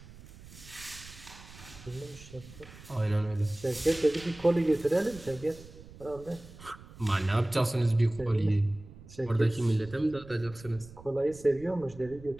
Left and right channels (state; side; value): noise; right; rumble, 18 dB below the sound